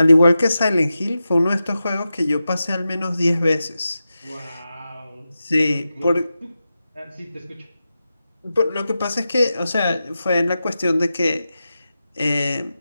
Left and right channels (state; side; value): inverted; both; correlation -0.92